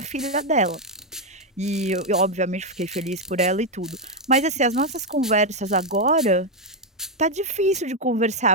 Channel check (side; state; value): both; normal; correlation 0.03